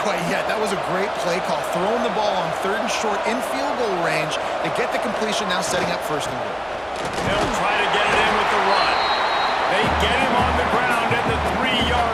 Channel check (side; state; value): both; identical; correlation 1.00